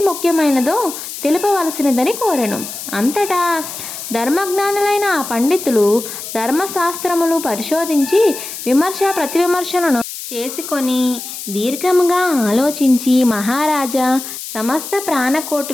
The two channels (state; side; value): noise; left; hiss, 9 dB below the sound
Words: ముఖ్యమైనదో తెలుపవలసినదని కోరెను. అంతటా ధర్మజ్ఞానులైన ఆ పండితులు ధర్మశాస్త్రములు పరిశోధించి విమర్శ ప్రతివిమర్శలను చేసుకొని దీర్ఘముగా ఆలోచించి, మహారాజా, సమస్త